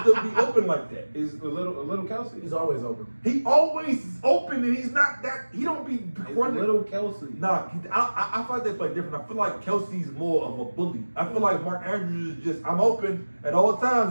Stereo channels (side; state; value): both; inverted; correlation -1.00